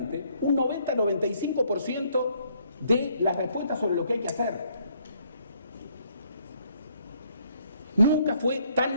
un 90-95% de las respuestas sobre lo que hay que hacer. Nunca fue tan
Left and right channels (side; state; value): both; inverted; correlation -0.67